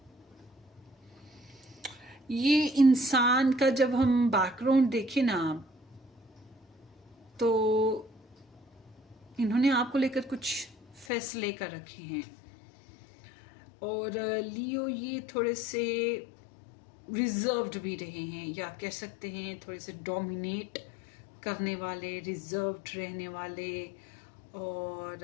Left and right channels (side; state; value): right; drops out; at 11.1 s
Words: ये इंसान का जब हम background देखें ना, तो इन्होंने आपको लेकर कुछ फैसले कर रखे हैं। और लियो ये थोड़े से रिजर्व्ड भी रहे हैं, या कह सकते हैं थोड़े से डोमिनेट करने वाले, रिजर्व्ड रहने वाले, और